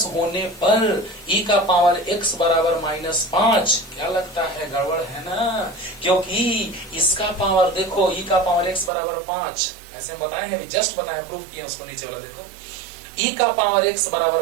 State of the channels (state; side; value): drops out; left; at 8.9 s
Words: होने पर e का पावर x बराबर -5, क्या लगता है गड़बड़ है ना? क्योंकि इसका पावर देखो e का पावर x बराबर 5, ऐसे हम बताए हैं, जस्ट बताए, प्रूफ किए उसको, नीचे वाला देखो, e का पावर x